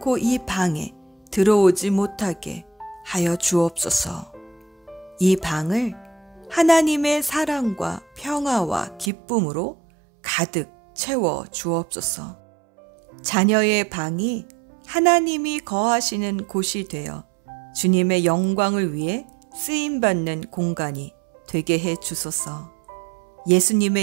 이 방에 들어오지 못하게 하여 주옵소서. 이 방을 하나님의 사랑과 평화와 기쁨으로 가득 채워 주옵소서. 자녀의 방이 하나님이 거하시는 곳이 되어 주님의 영광을 위해 쓰임받는 공간이 되게 해 주소서.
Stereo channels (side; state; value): left; drops out; at 9.1 s